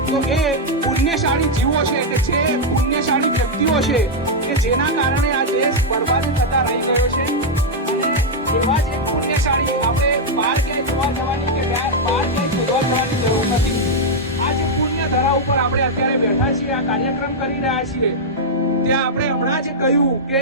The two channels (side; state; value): both; normal; correlation -0.02